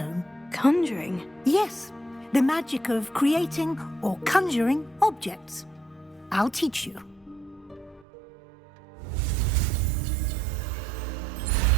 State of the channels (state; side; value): drops out; left; at 8.1 s